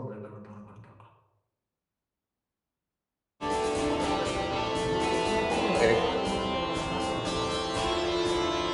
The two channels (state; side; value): identical; both; correlation 1.00